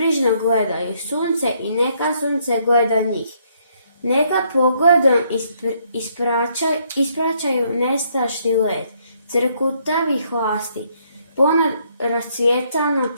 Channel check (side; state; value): both; inverted; correlation -0.70